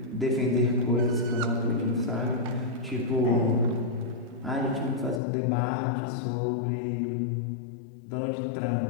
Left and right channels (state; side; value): drops out; right; at 5.2 s